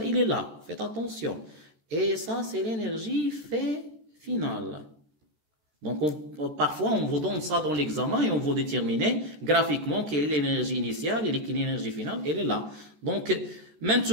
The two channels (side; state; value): left; late; 13 ms